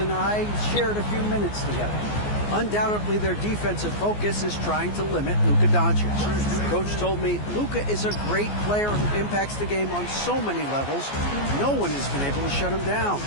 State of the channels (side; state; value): right; late; 14 ms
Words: I shared a few minutes together. Undoubtedly, their defensive focus is trying to limit Luka Doncic. Coach told me Luka is a great player who impacts the game on so many levels. No one has been able to shut him down.